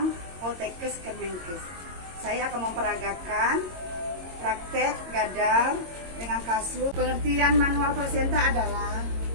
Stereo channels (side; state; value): left; late; 22 ms